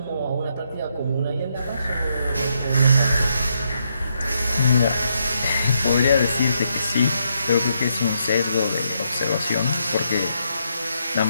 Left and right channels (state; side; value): inverted; both; correlation -0.78